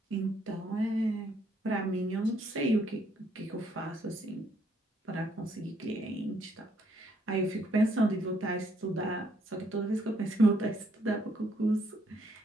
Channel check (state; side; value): normal; both; correlation 0.70